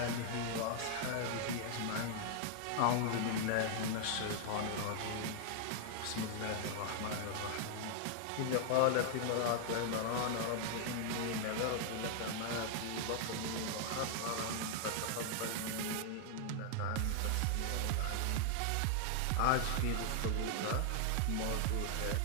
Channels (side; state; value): both; different; correlation 0.00